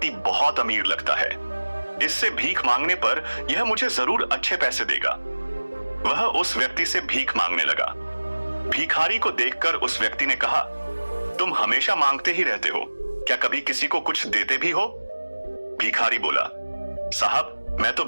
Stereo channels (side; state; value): both; inverted; correlation -1.00